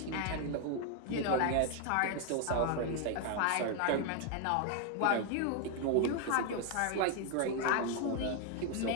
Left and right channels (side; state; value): both; different; correlation 0.01